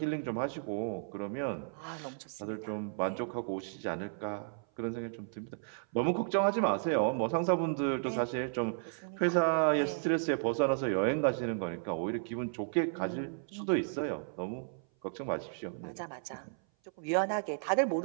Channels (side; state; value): left; silent; 55 dB below the other